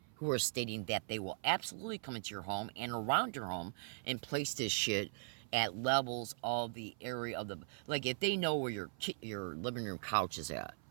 who are stating that they will absolutely come into your home and around your home and place this shit at levels of the area of the... Like, if they know where your living room couch is at,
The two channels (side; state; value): left; silent; 51 dB below the other